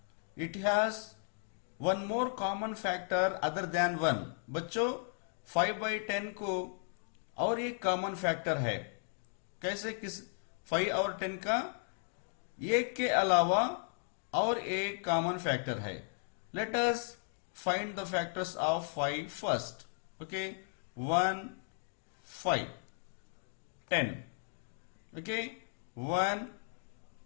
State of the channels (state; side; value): silent; right; digital silence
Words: it has one more common factor other than 1. बच्चों, 5 by 10 को और एक कॉमन फैक्टर है. कैसे? किस 5 और 10 का एक के अलावा और एक कॉमन फैक्टर है. Let us find the factors of 5 first. Okay, 1, 5, 10. Okay, 1,